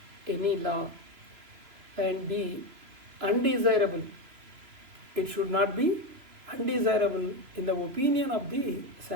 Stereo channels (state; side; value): late; left; 3.0 ms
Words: any law, and be undesirable. It should not be undesirable in the opinion of the